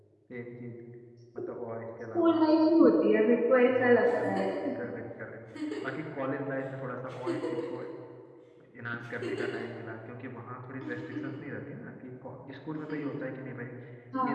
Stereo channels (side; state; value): both; identical; correlation 1.00